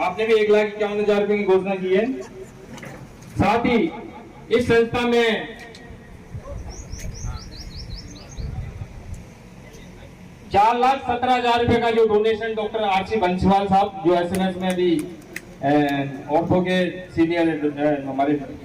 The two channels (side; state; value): both; identical; correlation 1.00